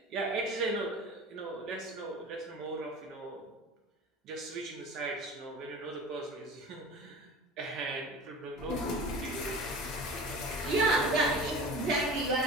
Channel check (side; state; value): both; normal; correlation 0.37